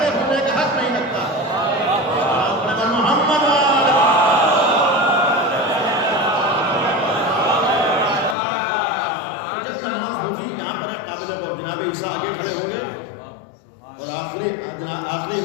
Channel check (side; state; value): right; drops out; at 8.3 s